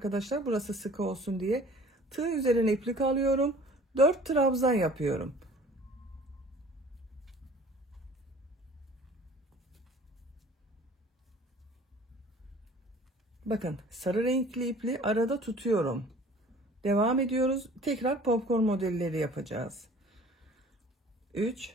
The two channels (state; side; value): normal; both; correlation 0.49